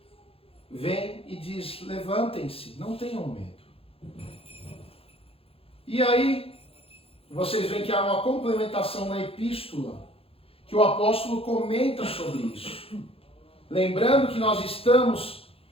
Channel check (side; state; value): right; late; 0.27 ms